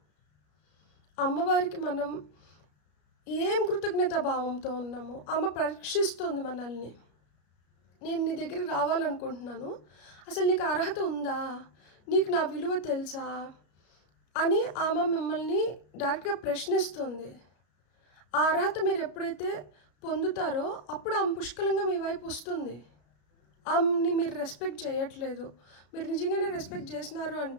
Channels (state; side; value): late; right; 33 ms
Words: అమ్మవారికి మనం ఏం కృతజ్ఞతా భావంతో ఉన్నామో ఆమె పరీక్షిస్తుంది మనల్ని. నేను నీ దగ్గరికి రావాలనుకుంటున్నాను, అసలు నీకు అర్హత ఉందా, నీకు నా విలువ తెలుసా అని ఆమె మిమ్మల్ని డైరెక్ట్గా ప్రశ్నిస్తుంది. ఆ అర్హత మీరు ఎప్పుడైతే పొందుతారో అప్పుడు ఆమె పుష్కలంగా మీ వైపు వస్తుంది. ఆమెని మీరు రెస్పెక్ట్ చేయట్లేదు, మీరు నిజంగానే రెస్పెక్ట్ చేసినారు